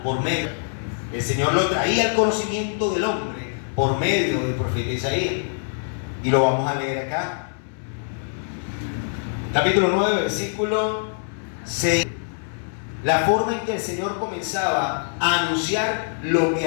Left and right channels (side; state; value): right; silent; 60 dB below the other